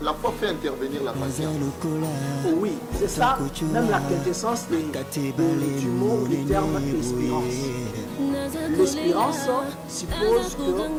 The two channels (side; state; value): both; identical; correlation 1.00